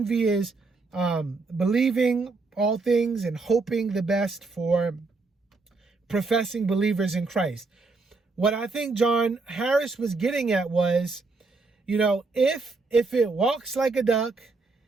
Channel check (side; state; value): left; quieter; 3.8 dB